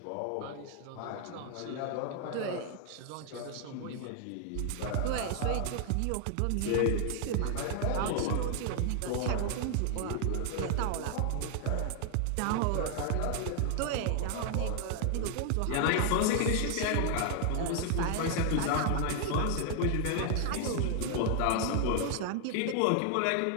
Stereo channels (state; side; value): different; both; correlation 0.00